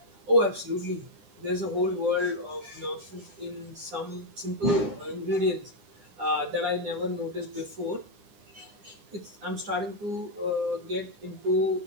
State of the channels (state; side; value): late; left; 9.9 ms